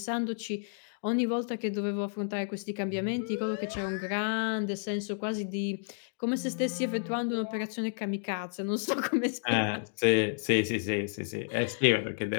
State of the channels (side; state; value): right; silent; digital silence